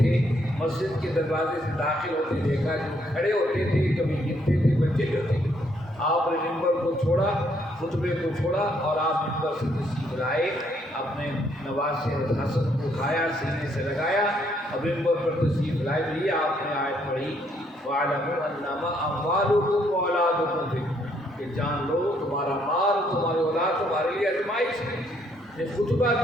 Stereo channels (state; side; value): normal; both; correlation 0.70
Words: مسجد کے دروازے سے داخل ہوتے دیکھا، جو کھڑے ہوتے تھے کبھی گرتے تھے بچے جو تھے، آپ نے منبر کو چھوڑا، خطبے کو چھوڑا اور آپ منبر سے تشریف لائے، اپنے نواسے حسن کو اٹھایا، سینے سے لگایا اور منبر پر تشریف لائے۔ بھی آپ نے آیت پڑھی وَاعْلَمُوا أَنَّمَا أَمْوَالُكُمْ وَأَوْلَادُكُمْ فِتْنَةٌ، کہ جان لو تمہارا مال تمہاری اولاد تمہارے لیے آزمائش ہے۔ یہ خطبہ